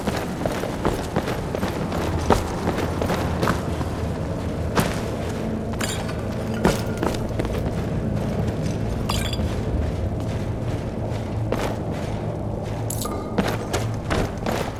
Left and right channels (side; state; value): both; identical; correlation 1.00